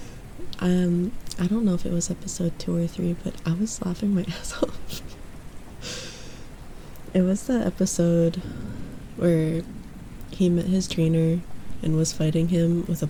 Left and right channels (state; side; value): identical; both; correlation 1.00